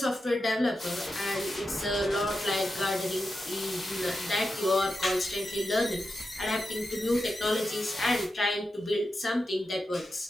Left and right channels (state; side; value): normal; both; correlation 0.89